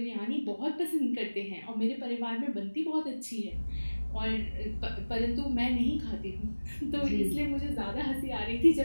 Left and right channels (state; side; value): inverted; both; correlation -1.00